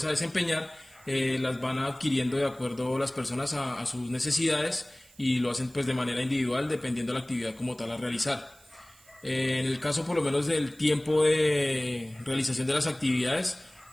a desempeñar, las van adquiriendo de acuerdo a las personas a sus necesidades, y lo hacen pues de manera individual dependiendo de la actividad como tal a realizar. En el caso por lo menos del tiempo de realización de las actividades,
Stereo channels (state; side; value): noise; right; hiss, 27 dB below the sound